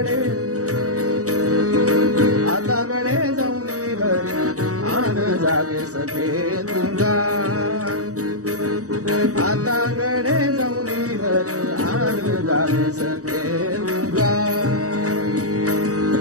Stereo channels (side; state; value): left; late; 0.66 ms